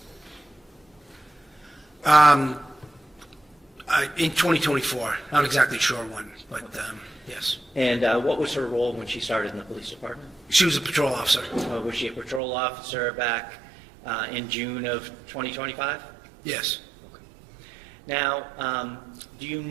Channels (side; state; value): left; drops out; at 12.4 s